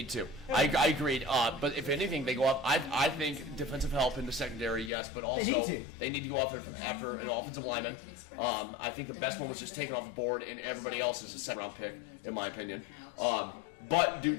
two. I agreed. But if anything, they go up. I think defensive help in the secondary, yes, but also they need to go after an offensive lineman. I think the best one was just taken off the board, and everybody else is a second round pick, in my opinion. But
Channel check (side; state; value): right; drops out; at 4.9 s